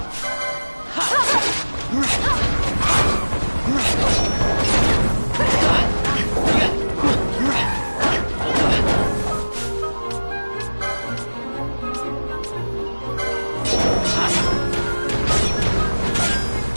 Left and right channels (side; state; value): both; inverted; correlation -1.00